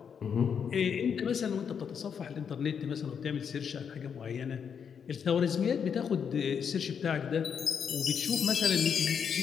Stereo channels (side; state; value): right; quieter; 7.1 dB